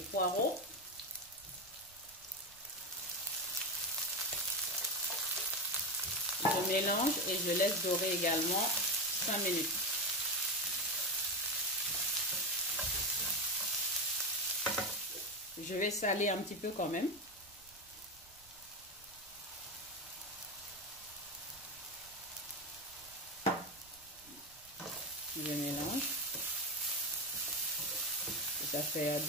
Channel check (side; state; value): right; noise; rumble, 26 dB below the sound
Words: Je mélange et je laisse dorer également 5 minutes. Je vais saler un petit peu quand même. Je mélange. Ça fait